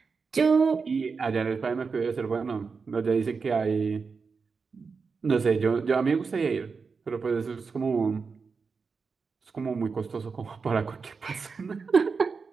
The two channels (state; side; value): quieter; left; 5.0 dB